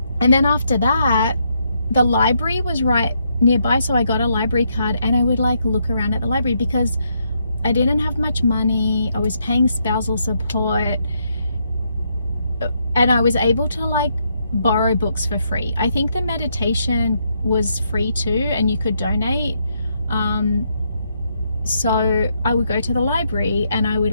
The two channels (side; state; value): both; inverted; correlation -0.76